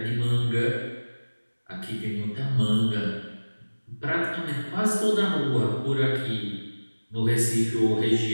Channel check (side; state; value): both; inverted; correlation -1.00